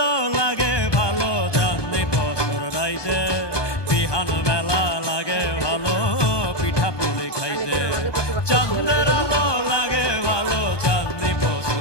লাগে ভালো চাঁদনি বছর রাইতে, বিহান বেলা লাগে ভালো পিঠা পুলি খাইতে। চাঁদের আলো লাগে ভালো চাঁদনি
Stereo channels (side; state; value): right; late; 1.2 ms